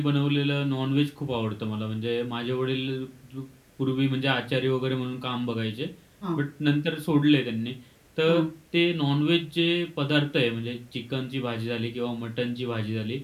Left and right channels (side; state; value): both; identical; correlation 1.00